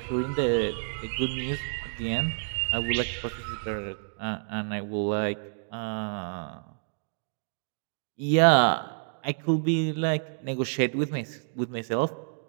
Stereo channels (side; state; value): left; silent; digital silence